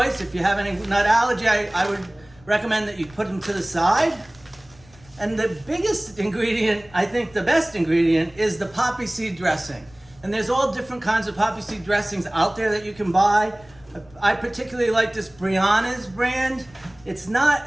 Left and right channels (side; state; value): left; noise; rumble, 26 dB below the sound